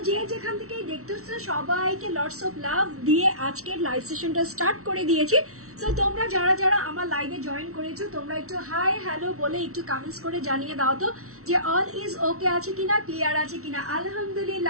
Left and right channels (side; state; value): left; late; 0.63 ms